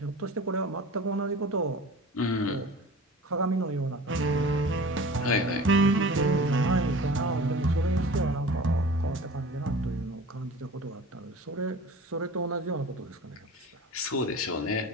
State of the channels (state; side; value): normal; both; correlation 0.39